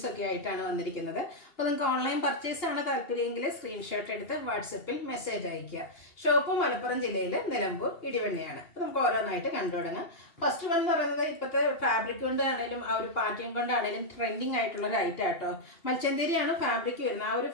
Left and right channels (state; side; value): late; right; 2.8 ms